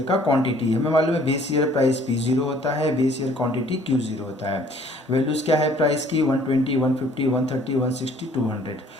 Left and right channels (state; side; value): normal; both; correlation 0.57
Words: का क्वांटिटी। हमें मालूम है बेस ईयर प्राइस P0 होता है, बेस ईयर क्वांटिटी Q0 होता है। वैल्यूज क्या है प्राइस की? 120, 150, 130, 160, 200।